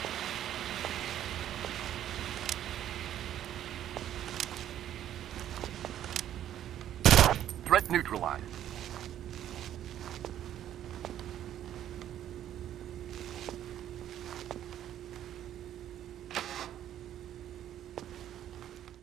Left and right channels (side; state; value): left; quieter; 11.3 dB